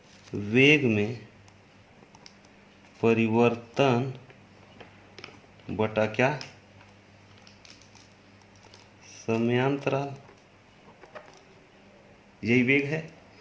वेग में परिवर्तन बटा क्या, समयांतराल, यही वेग है।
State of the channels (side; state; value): both; identical; correlation 1.00